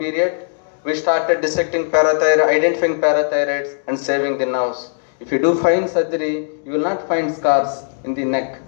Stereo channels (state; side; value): silent; right; digital silence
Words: We started dissecting parathyroid, identifying parathyroids and saving the nerves. If you do fine surgery, you will not find scars in the neck.